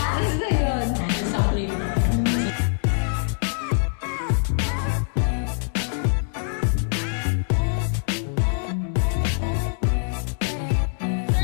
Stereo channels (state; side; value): silent; right; digital silence